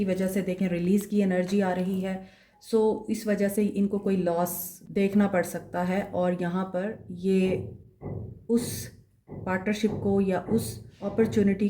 वजह से देखें रिलीज़ की एनर्जी आ रही है। सो इस वजह से इनको कोई लॉस देखना पड़ सकता है और यहाँ पर ये उस पार्टनरशिप को या उस अपॉर्चुनिटी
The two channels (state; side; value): identical; both; correlation 1.00